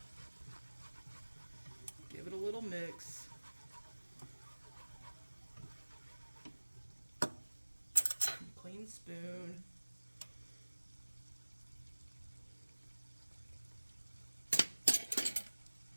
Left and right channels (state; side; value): inverted; both; correlation -1.00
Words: Give it a little mix. Clean spoon. I